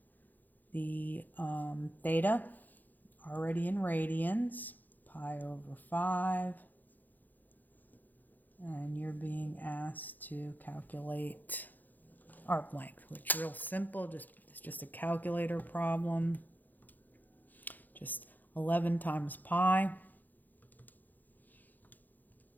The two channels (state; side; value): late; right; 0.084 ms